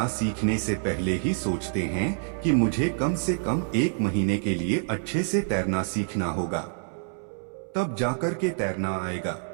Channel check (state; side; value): silent; left; 60 dB below the other